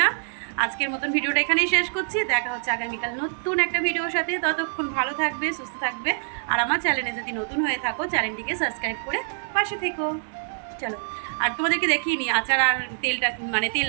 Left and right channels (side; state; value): left; silent; digital silence